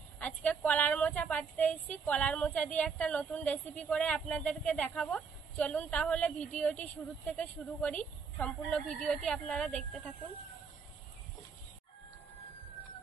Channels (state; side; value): quieter; left; 5.7 dB